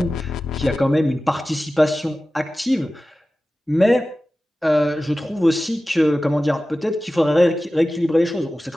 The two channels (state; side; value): normal; both; correlation 0.95